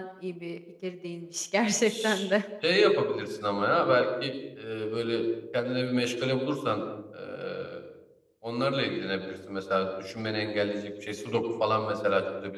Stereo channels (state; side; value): identical; both; correlation 1.00